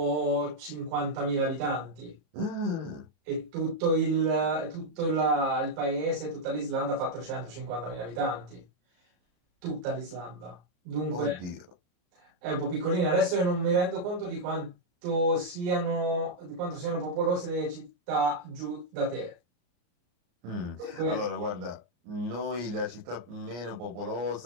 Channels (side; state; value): left; late; 35 ms